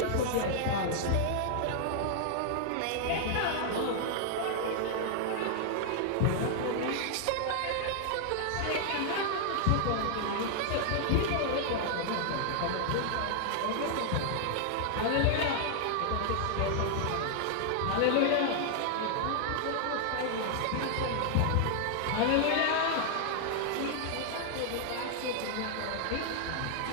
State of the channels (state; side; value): different; both; correlation 0.00